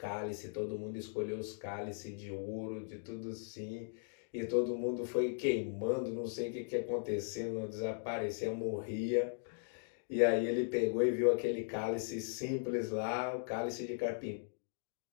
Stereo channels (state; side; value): silent; right; digital silence